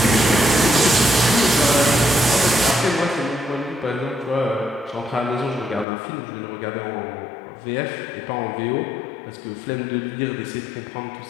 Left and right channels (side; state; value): right; drops out; at 5.9 s